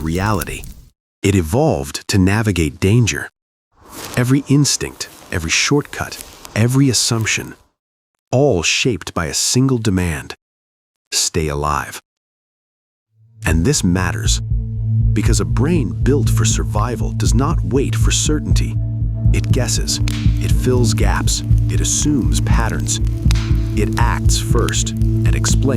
reality. It evolved to navigate danger. Every instinct, every shortcut, every assumption, all shaped by a single demand: stay alive. And this matters, because a brain built for survival does not wait for certainty. It guesses, it fills gaps, it assumes patterns. It acts first and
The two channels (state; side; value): identical; both; correlation 1.00